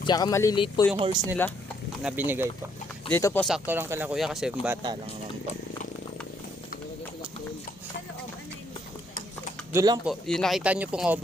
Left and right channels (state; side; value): normal; both; correlation 0.70